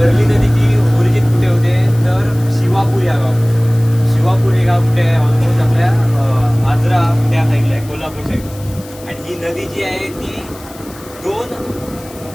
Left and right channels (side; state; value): left; noise; hiss, 20 dB below the sound